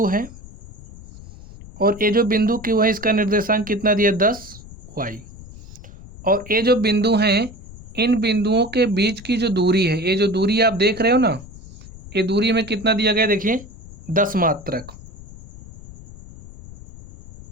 है और ये जो बिंदु Q है इसका निर्देशांक कितना दिया, 10y। और ये जो बिंदु हैं, इन बिंदुओं के बीच की जो दूरी है, ये जो दूरी आप देख रहे हो ना, ये दूरी में कितना दिया गया, देखिए 10 मात्रक।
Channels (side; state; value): left; noise; rumble, 17 dB below the sound